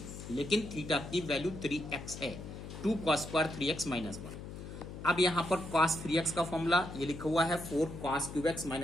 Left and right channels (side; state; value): left; noise; hum, 11 dB below the sound